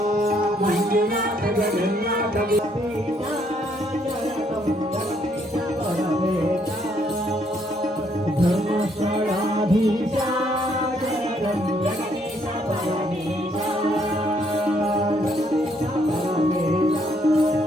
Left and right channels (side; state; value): both; normal; correlation 0.70